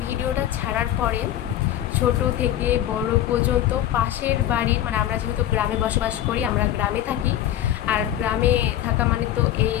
ভিডিওটা ছাড়ার পরে ছোট থেকে বড় পর্যন্ত পাশের বাড়ির, মানে আমরা যেহেতু গ্রামে বসবাস করি, আমরা গ্রামে থাকি, আর গ্রামে থাকা মানে তো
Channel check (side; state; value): right; quieter; 12.0 dB